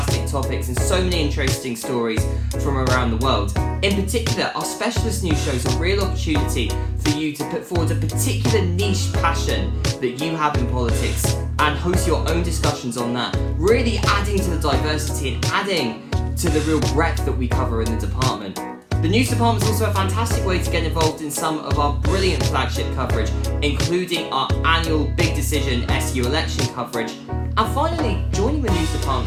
topics and so many interesting stories from around the world. In particular, our specialist news shows are a real opportunity for you to put forward a particular niche passion that you have in politics and host your own discussions on that, really adding to the diversity and adding to the real breadth that we cover in the department. The news department is also a fantastic way to get involved in some of our brilliant flagship coverage, including our annual Big Decision SU election coverage. And finally, joining the news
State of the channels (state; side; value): identical; both; correlation 1.00